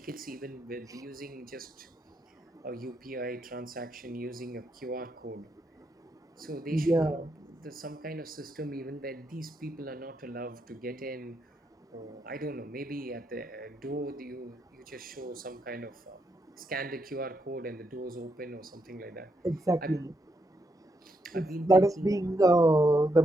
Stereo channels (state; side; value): normal; both; correlation 0.79